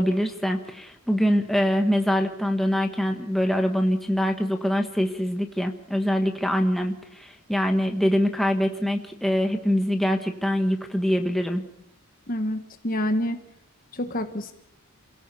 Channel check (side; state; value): both; normal; correlation 0.93